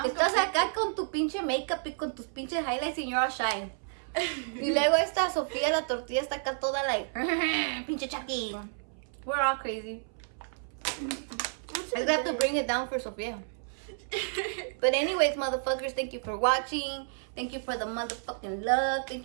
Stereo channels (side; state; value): left; silent; 57 dB below the other